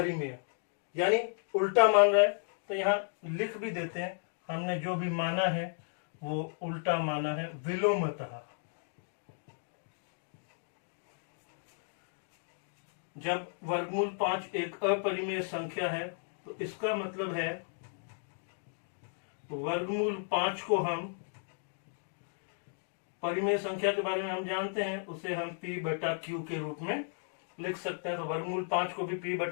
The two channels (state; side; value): silent; right; digital silence